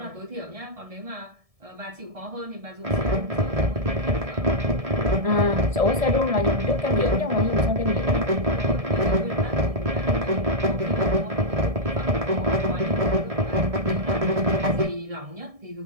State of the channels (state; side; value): late; left; 1.7 ms